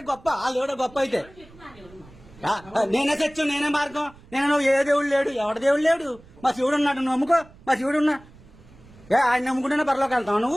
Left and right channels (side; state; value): right; noise; rumble, 24 dB below the sound